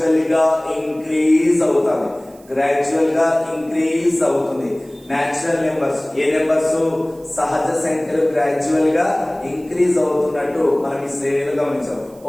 గా ఇంక్రీజ్ అవుతుంది. న్యాచురల్ నెంబర్స్, ఏ నెంబర్స్? సహజ సంఖ్యలు గ్రాడ్యువల్ గా ఇంక్రీజ్ అవుతున్నట్టు మనం ఈ శ్రేణిలో గమనించాం.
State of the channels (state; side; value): noise; right; hiss, 27 dB below the sound